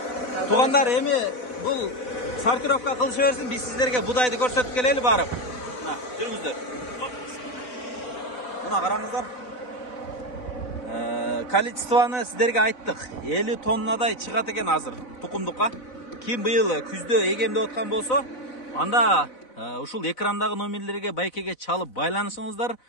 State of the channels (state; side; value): late; right; 4.0 ms